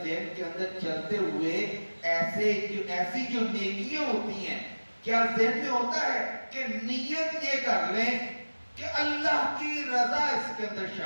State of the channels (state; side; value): inverted; both; correlation -1.00